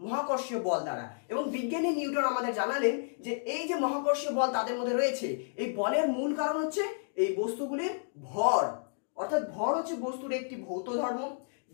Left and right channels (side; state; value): right; silent; digital silence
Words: মহাকর্ষীয় বল দ্বারা। এবং বিজ্ঞানী নিউটন আমাদের জানালেন যে এই যে মহাকর্ষীয় বল তাদের মধ্যে রয়েছে, এই বলের মূল কারণ হচ্ছে এই বস্তুগুলির ভর। অর্থাৎ ভর হচ্ছে বস্তুর একটি ভৌত ধর্ম,